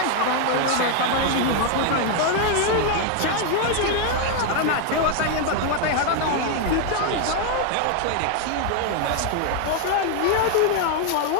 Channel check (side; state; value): both; different; correlation 0.00